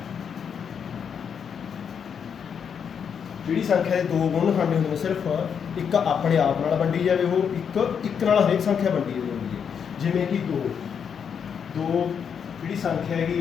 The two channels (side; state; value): right; quieter; 7.2 dB